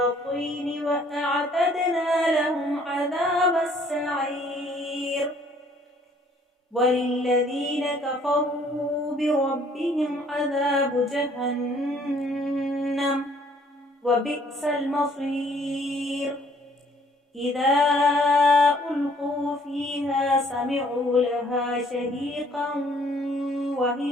وأعتدنا لهم عذاب السعير، وللذين كفروا بربهم عذاب جهنم وبئس المصير، إذا ألقوا فيها سمعوا لها شهيقا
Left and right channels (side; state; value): both; normal; correlation 0.60